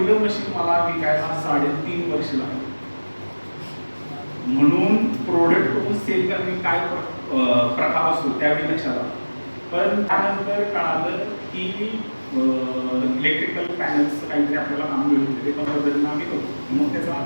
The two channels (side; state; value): both; inverted; correlation -1.00